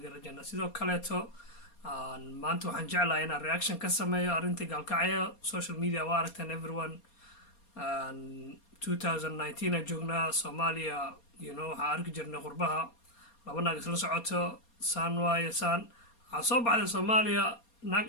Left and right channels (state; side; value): late; right; 4.3 ms